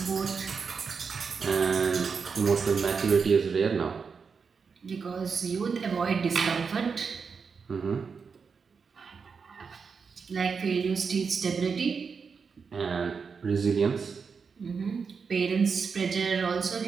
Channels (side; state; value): left; quieter; 5.6 dB